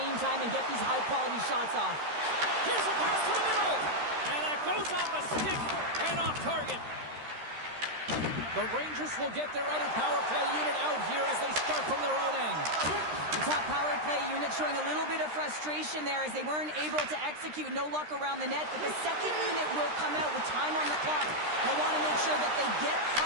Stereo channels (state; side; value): late; left; 13 ms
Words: time and get these high-quality shots off. Here's a pass to the middle. And that goes off a stick and off target. The Rangers will get their other power play unit out here as they start from their own end. The top power play unit showing a little bit of frustration there as they weren't able to execute. No luck around the net, but the second unit will come out with time on the clock. They want to make sure that they get